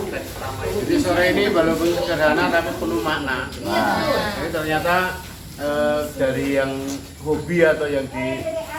pertama ini. Jadi sore ini walaupun sederhana tapi penuh makna. Jadi ternyata dari yang hobi atau yang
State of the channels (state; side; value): identical; both; correlation 1.00